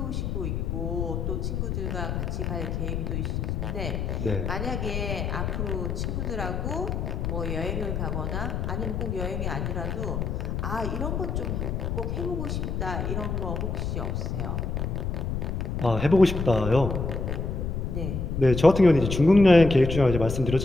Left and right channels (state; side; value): noise; left; rumble, 2 dB below the sound